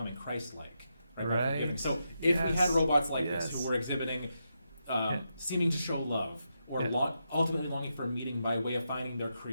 Christ-like, right? By forgiving. So if we had robots like this who were exhibiting, seeming to show love, or ultimately longing for a meaning by way of finding their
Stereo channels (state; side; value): inverted; both; correlation -0.84